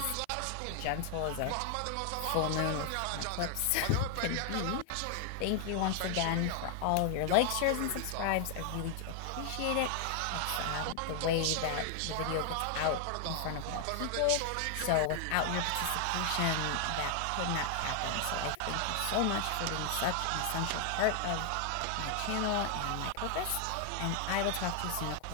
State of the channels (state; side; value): different; both; correlation 0.00